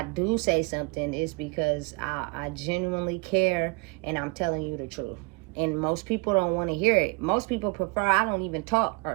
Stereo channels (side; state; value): left; quieter; 29.0 dB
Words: do say something, it's because I genuinely care and I'm telling you the truth. And most people don't want to hear it. Most people prefer I don't even talk or